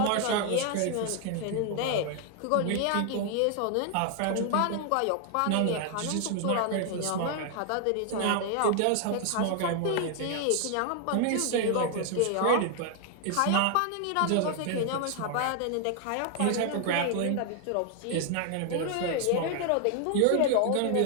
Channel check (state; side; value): different; both; correlation 0.00